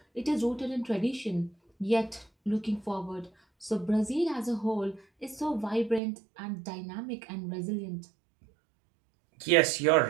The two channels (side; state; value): left; drops out; at 6.0 s